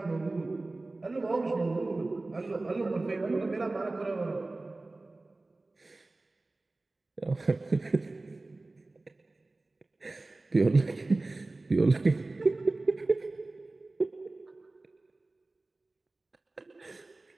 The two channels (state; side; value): quieter; left; 3.1 dB